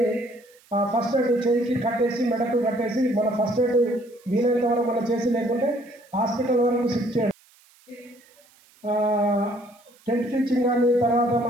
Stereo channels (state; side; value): noise; right; hiss, 30 dB below the sound